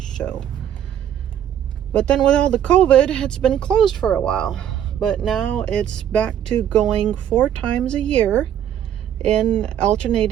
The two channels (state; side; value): quieter; left; 10.1 dB